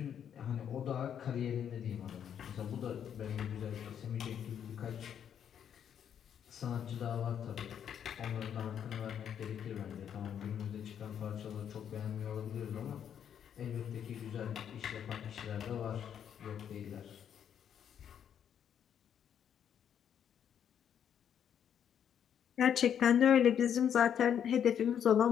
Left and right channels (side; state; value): right; quieter; 8.8 dB